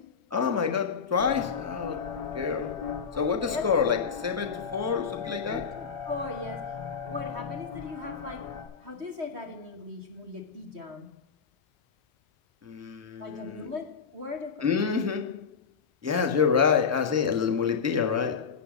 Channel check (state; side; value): quieter; right; 6.0 dB